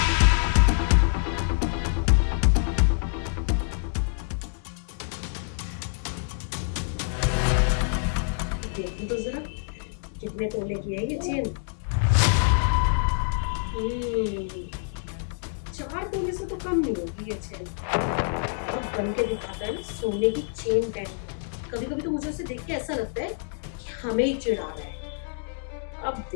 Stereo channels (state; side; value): silent; right; digital silence